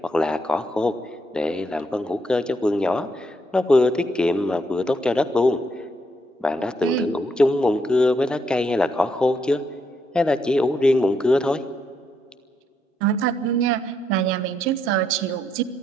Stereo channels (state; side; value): normal; both; correlation 0.76